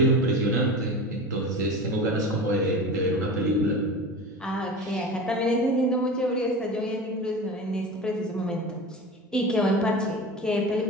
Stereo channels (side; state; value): both; normal; correlation 0.31